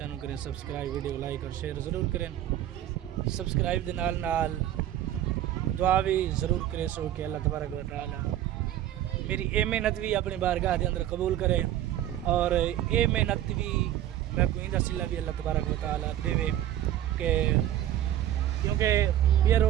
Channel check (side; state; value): left; quieter; 12.3 dB